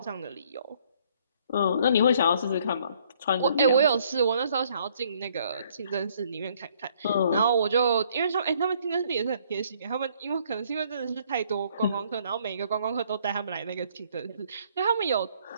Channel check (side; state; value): both; inverted; correlation -0.64